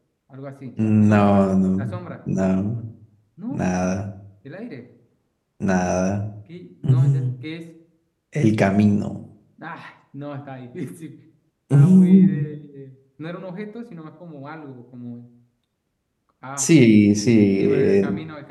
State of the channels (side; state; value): both; identical; correlation 1.00